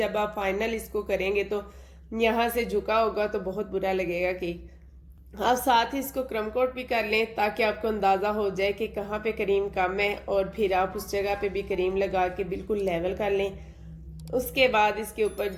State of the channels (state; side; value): identical; both; correlation 1.00